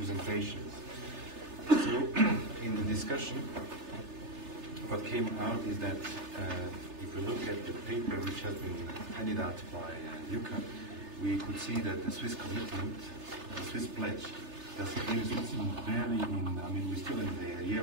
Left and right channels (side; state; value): left; late; 3.3 ms